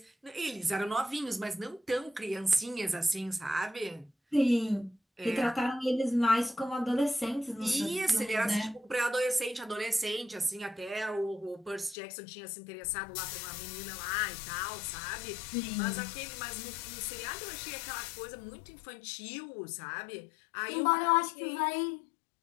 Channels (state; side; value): drops out; right; at 12.0 s